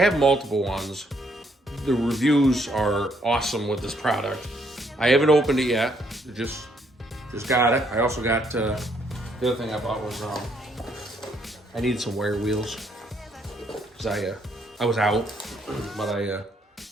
multiple ones. The reviews are awesome with this product. I haven't opened it yet. Just got it. I also got, the other thing I bought was, I needed some wire wheels. I was out, but I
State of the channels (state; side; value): normal; both; correlation 0.70